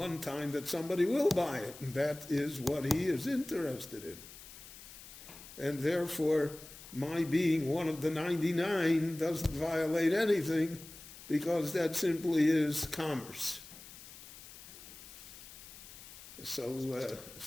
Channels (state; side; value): noise; left; hiss, 16 dB below the sound